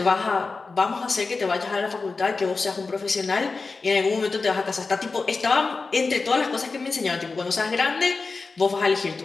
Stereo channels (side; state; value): right; quieter; 4.1 dB